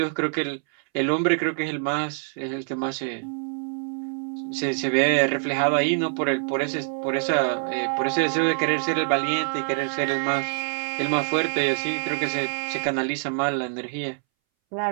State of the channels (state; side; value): silent; left; 62 dB below the other